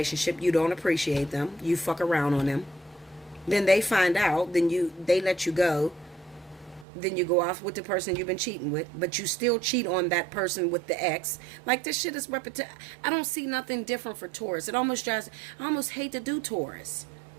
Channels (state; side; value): drops out; left; at 6.9 s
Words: you don't appreciate them. You fuck around on them. Then they find out. Then they let you go. Then you go off with the person you've been cheating with, but you still cheat on that person with the ex. Like, this shit is repetitive. I don't see nothing different for Taurus. I almost hate to do Taurus.